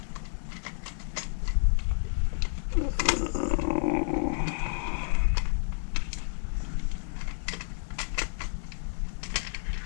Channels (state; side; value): silent; right; digital silence